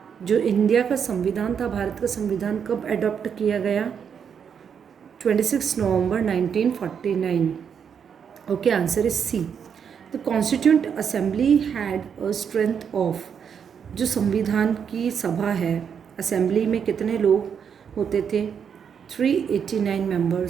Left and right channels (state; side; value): quieter; left; 7.3 dB